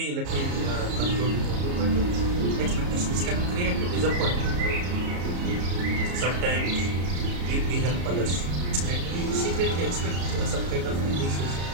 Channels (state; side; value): late; left; 34 ms